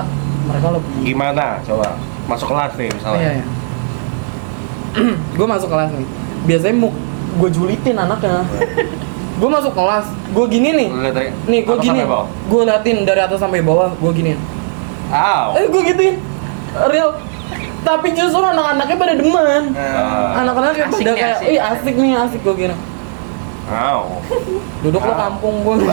mereka lebih. Gimana? Coba masuk kelas nih misalnya. Iya. Gue masuk kelas nih. Biasanya gue julitin anaknya. Gue masuk kelas, gue gini nih. Lu lihat dari Nih gue atas gini. sampai bawah? Gue liatin dari atas sampai bawah, gue gini. Aw. Gue gituin. Real. Tapi justru anak-anaknya pada demen. Ah. Anak-anaknya Asik pada nih, kayak, asik. ih asik nih, asik gue gini. Aw. Duduk lo kampung gue.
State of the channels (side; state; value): left; silent; digital silence